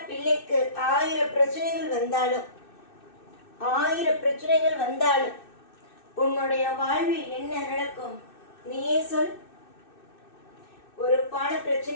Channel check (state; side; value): late; right; 2.6 ms